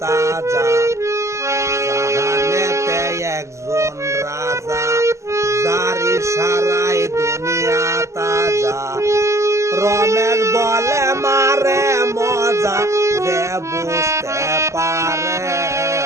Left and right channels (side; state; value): left; late; 0.14 ms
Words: তাজা জাহানেতে একজন রাজা যার ইশারায় দুনিয়া তাজা রমেশ বলে মারে মজা যে বুঝতে পারে